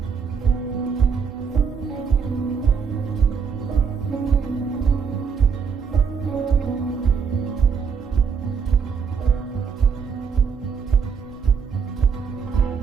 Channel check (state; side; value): quieter; left; 6.2 dB